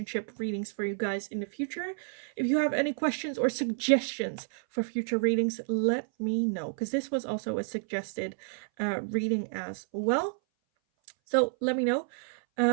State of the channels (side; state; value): left; silent; 58 dB below the other